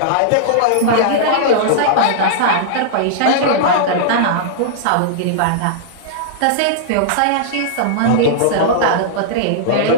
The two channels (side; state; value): both; different; correlation -0.02